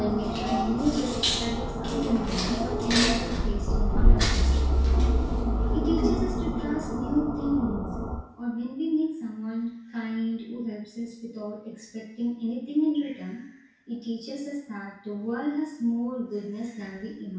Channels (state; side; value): identical; both; correlation 1.00